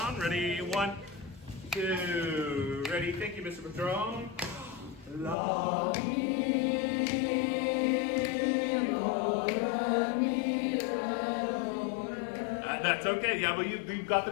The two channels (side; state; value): right; drops out; at 5.4 s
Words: Ready? 1, 2. Ready? Thank you, Mr. Patron. La, mi, do, re, mi, re, do, re. That's okay. Yeah, but we've got